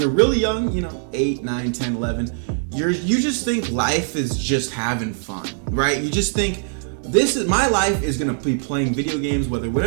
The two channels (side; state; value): left; silent; 65 dB below the other